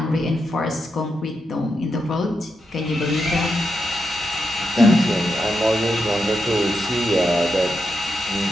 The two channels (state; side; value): normal; both; correlation 0.85